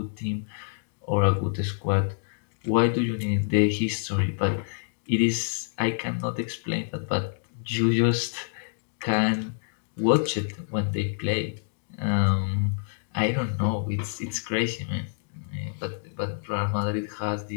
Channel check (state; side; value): silent; right; digital silence